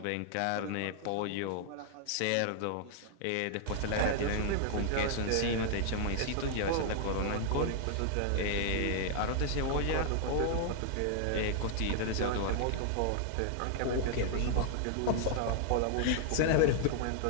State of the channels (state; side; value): different; both; correlation 0.00